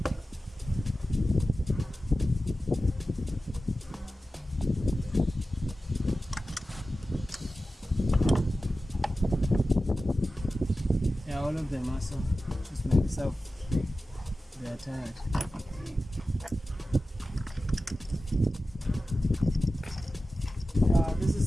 yeah, all of them also just make yourself they are tired. This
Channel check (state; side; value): normal; both; correlation 0.94